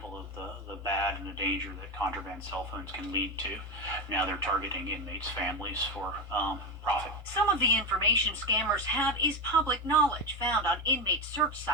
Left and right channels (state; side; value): normal; both; correlation 0.14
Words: of the bad and the danger that contraband cell phones can lead to. Now they're targeting inmates' families for profit. Some of the information scammers have is public knowledge found on inmate search